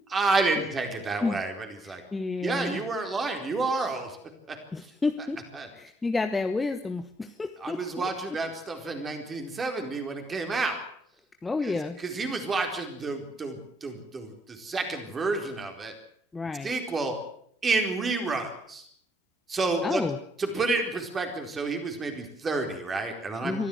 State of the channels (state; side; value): normal; both; correlation 0.72